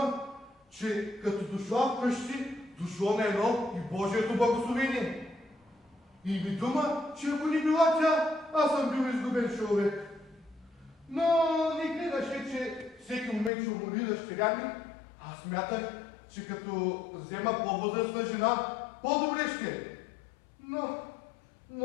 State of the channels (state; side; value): drops out; right; at 13.5 s